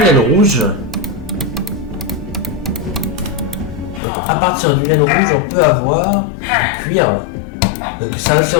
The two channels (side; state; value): right; drops out; at 4.0 s